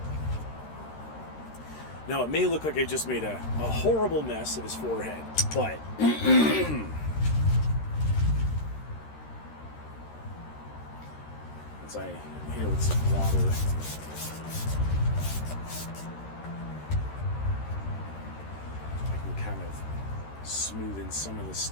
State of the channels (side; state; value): right; late; 13 ms